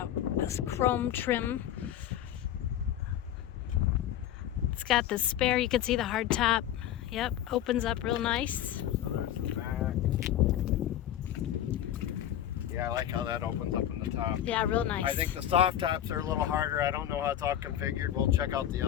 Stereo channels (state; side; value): quieter; right; 11.4 dB